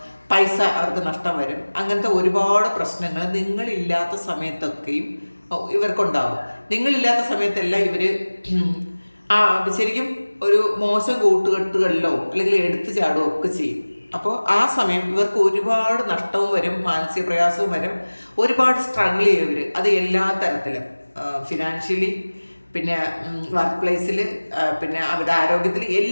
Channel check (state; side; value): inverted; both; correlation -1.00